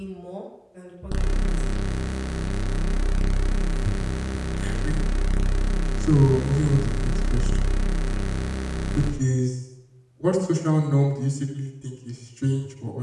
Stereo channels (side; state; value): both; identical; correlation 1.00